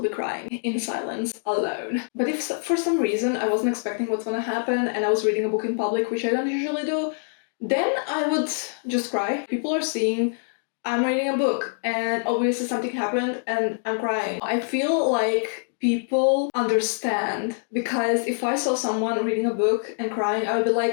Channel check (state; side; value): silent; right; digital silence